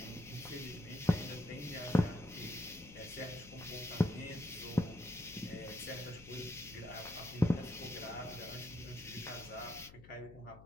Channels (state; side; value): noise; left; hum, 18 dB below the sound